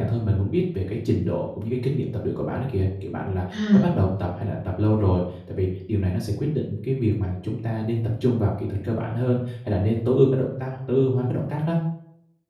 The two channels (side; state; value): both; identical; correlation 1.00